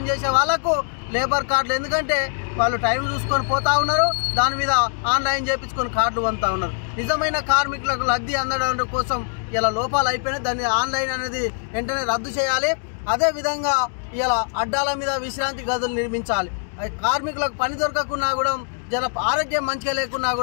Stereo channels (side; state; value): right; silent; 62 dB below the other